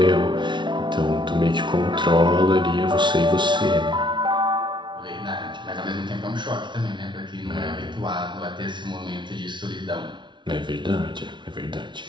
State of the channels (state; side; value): late; left; 0.23 ms